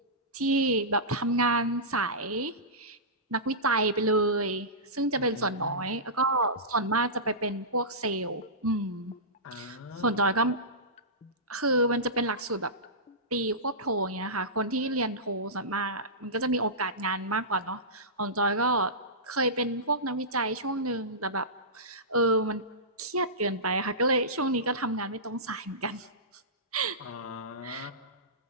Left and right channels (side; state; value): both; normal; correlation -0.18